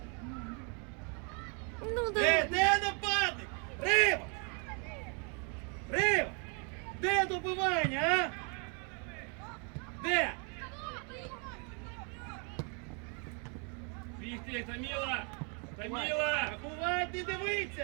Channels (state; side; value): quieter; left; 37.4 dB